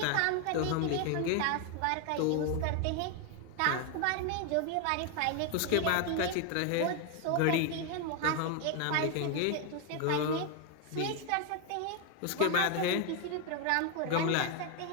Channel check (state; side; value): different; both; correlation 0.01